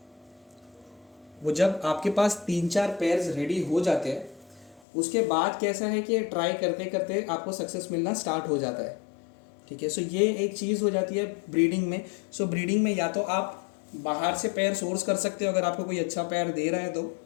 वो जब आपके पास 3-4 पेयर्स रेडी हो जाते हैं, उसके बाद कैसा है कि ट्राई करते करते आपको सक्सेस मिलना स्टार्ट हो जाता है, ठीक है। सो ये एक चीज़ हो जाती है ब्रीडिंग में। सो ब्रीडिंग में या तो आप बाहर से पेयर सोर्स कर सकते हो अगर आपको कोई अच्छा पेयर दे रहा है तो।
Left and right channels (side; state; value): right; drops out; at 4.8 s